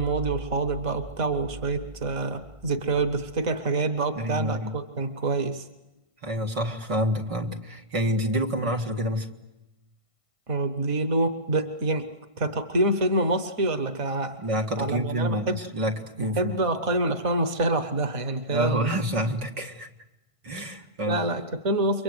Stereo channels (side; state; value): left; late; 1.5 ms